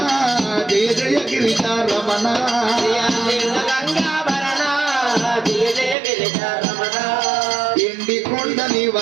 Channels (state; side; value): drops out; left; at 6.0 s